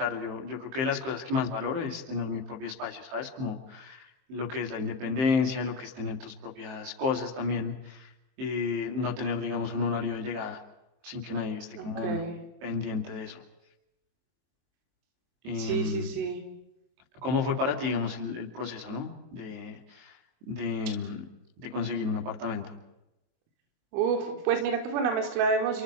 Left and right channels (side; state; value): left; late; 23 ms